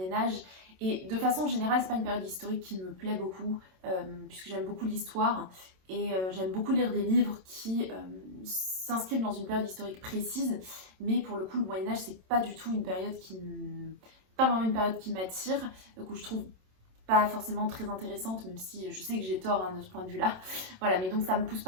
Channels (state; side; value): late; left; 27 ms